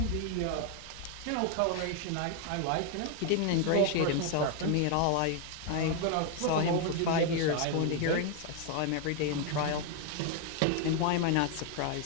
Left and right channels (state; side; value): different; both; correlation 0.01